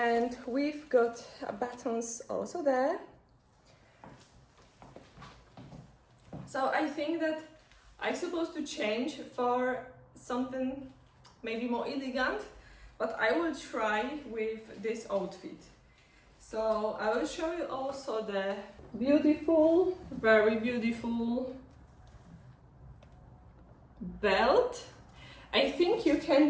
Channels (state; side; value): identical; both; correlation 1.00